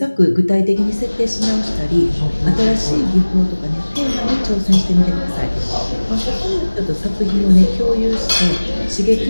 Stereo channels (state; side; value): inverted; both; correlation -1.00